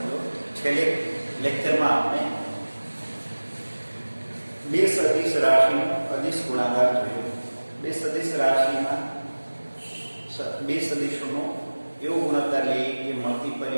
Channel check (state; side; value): inverted; both; correlation -1.00